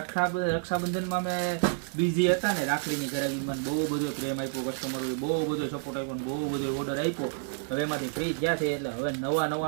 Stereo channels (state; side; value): silent; left; digital silence